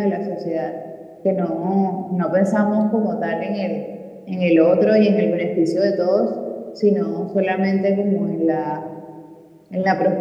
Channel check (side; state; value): both; identical; correlation 1.00